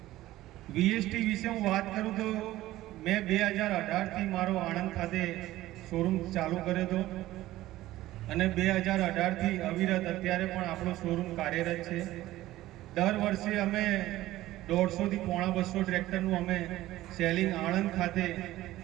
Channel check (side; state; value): left; quieter; 15.9 dB